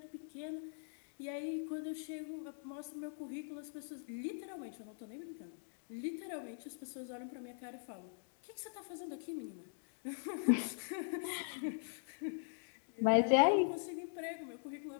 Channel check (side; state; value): right; silent; digital silence